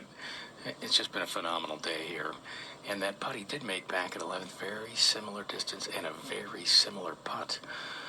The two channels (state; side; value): identical; both; correlation 1.00